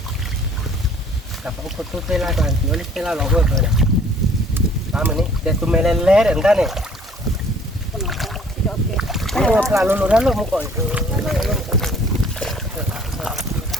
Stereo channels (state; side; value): normal; both; correlation 0.56